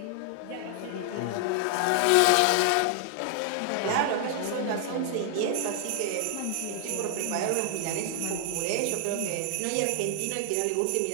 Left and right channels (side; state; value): both; different; correlation 0.00